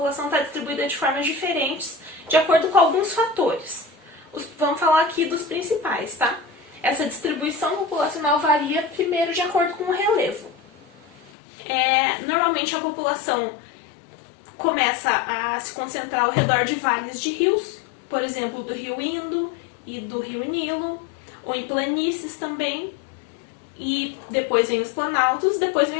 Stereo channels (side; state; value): right; drops out; at 11.3 s